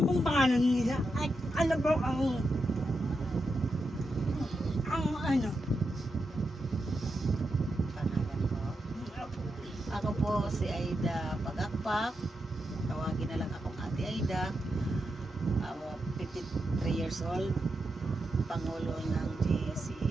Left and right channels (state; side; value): normal; both; correlation 0.86